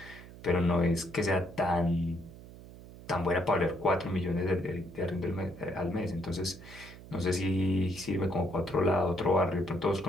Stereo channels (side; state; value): right; noise; hum, 17 dB below the sound